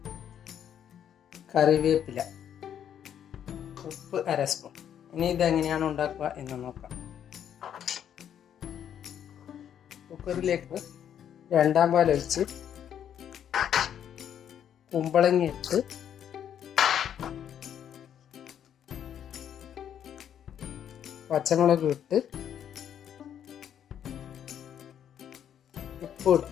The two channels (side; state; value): right; quieter; 9.4 dB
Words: കറിവേപ്പില, ഉപ്പ് 1/2 സ്പൂൺ. ഇനി ഇതെങ്ങനെയാണ് ഉണ്ടാക്കുക എന്ന് നോക്കാം. കുക്കറിലേക്ക് 2-ാം പാൽ ഒഴിച്ച് കുമ്പളങ്ങ ഇട്ട് പച്ചമുളക് ഇട്ട് ഉപ്പ്